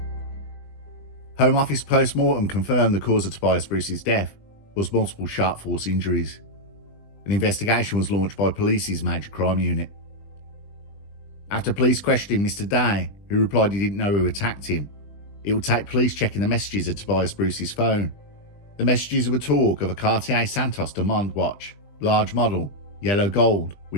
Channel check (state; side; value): late; right; 20 ms